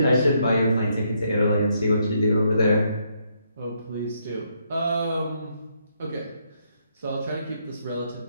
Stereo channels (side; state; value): both; inverted; correlation -0.75